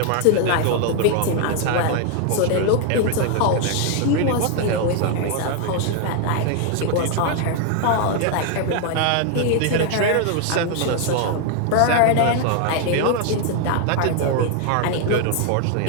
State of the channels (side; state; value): both; different; correlation 0.00